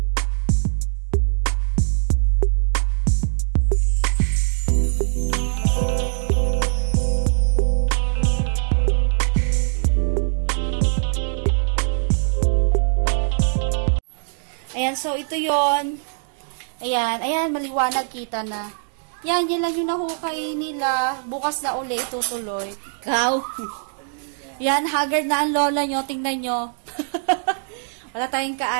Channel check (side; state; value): left; silent; 64 dB below the other